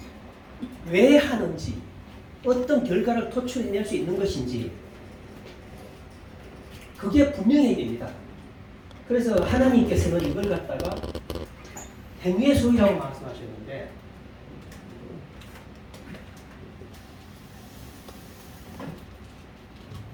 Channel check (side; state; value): both; identical; correlation 1.00